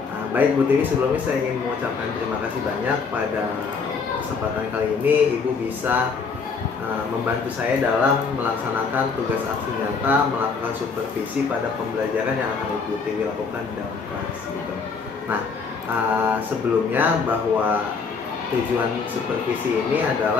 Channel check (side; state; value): right; quieter; 5.1 dB